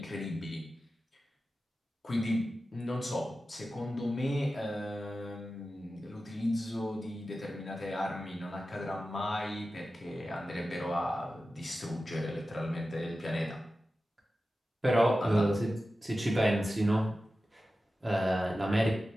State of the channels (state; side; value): normal; both; correlation 0.94